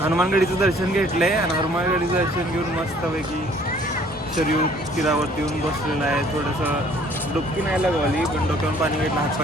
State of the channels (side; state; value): both; normal; correlation 0.57